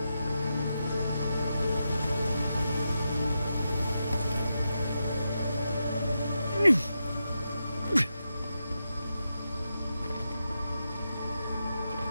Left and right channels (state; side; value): inverted; both; correlation -0.87